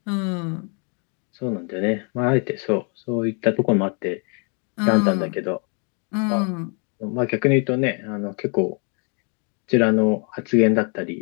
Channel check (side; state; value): right; quieter; 37.9 dB